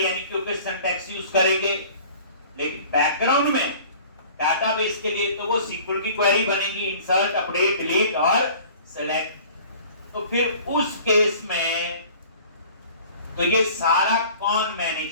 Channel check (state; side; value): inverted; both; correlation -0.47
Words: के सिंटैक्स यूज करेंगे, लेकिन बैकग्राउंड में डाटाबेस के लिए तो वो SQL की क्वेरी बनेगी, इंसर्ट, अपडेट, डिलीट और सिलेक्ट। तो फिर उस केस में तो ये सारा कौन